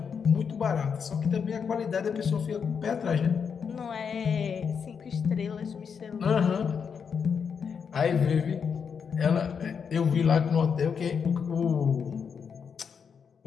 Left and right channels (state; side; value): quieter; right; 6.5 dB